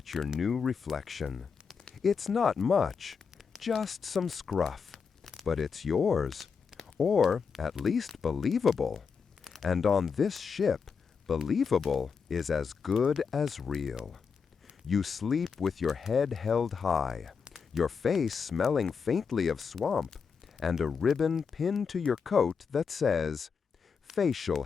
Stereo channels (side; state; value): right; quieter; 5.9 dB